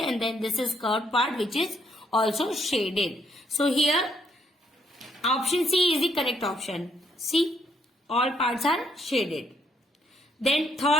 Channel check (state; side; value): normal; both; correlation 0.72